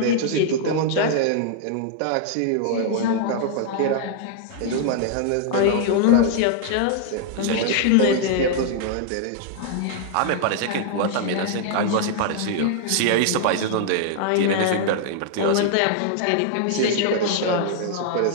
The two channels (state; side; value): different; both; correlation -0.01